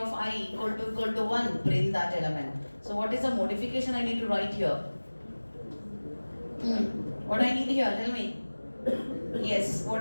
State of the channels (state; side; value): inverted; both; correlation -1.00